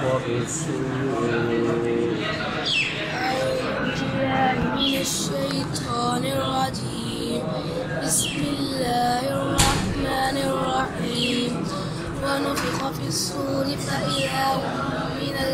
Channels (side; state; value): both; identical; correlation 1.00